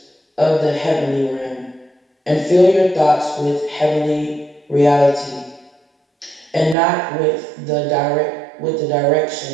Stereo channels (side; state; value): left; drops out; at 6.8 s